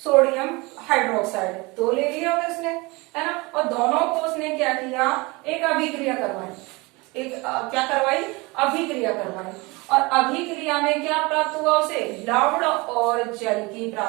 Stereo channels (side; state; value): left; quieter; 25.0 dB